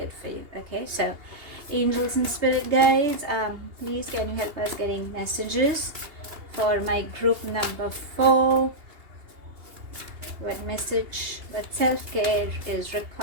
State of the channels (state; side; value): late; left; 2.8 ms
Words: for you. Okay, so angels and spirit guides, please can you help us getting messages for my group number 4? What message, what self-care is